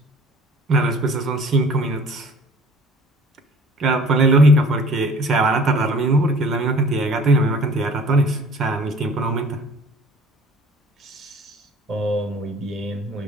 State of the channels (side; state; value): both; normal; correlation 0.50